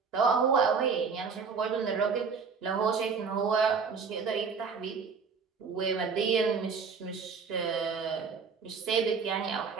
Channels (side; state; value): left; quieter; 5.5 dB